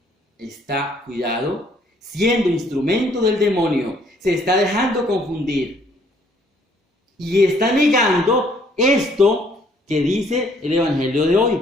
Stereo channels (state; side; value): normal; both; correlation 0.63